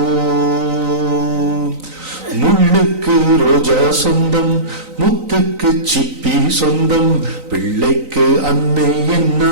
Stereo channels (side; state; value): left; late; 3.9 ms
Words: முள்ளுக்கு ரோஜா சொந்தம், முத்துக்கு சிப்பி சொந்தம், பிள்ளைக்கு அன்னை